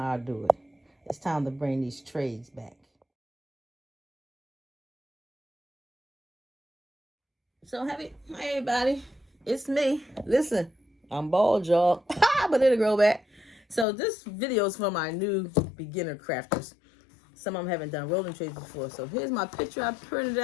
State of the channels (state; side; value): drops out; right; at 13.9 s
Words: I do it. It's time to bring these trays back. So hey everybody, it's me. Listen, I'm bald, y'all, but it'll grow back. So this video is for my new beginner crafters. Some of them haven't done rolling trays before. So here's my picture I printed